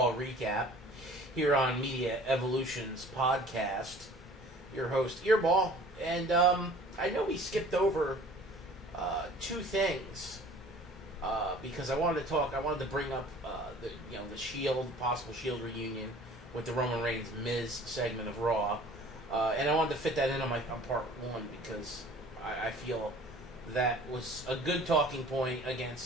recap here on Media Evolution's podcast. Your host, Earball. And I know we skipped over two things because I wanted to bring up the Shield, possible Shield reunion with the Roman Reigns Miz segment of Raw. And I wanted to fit that in on part 1 because I feel that was a good talking point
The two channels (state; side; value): normal; both; correlation 0.49